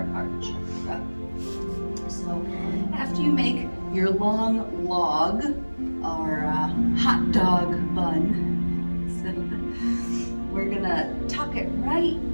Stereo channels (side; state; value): both; inverted; correlation -1.00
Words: heart chakra. So after you make your long log or hot dog bun, we're gonna tuck it right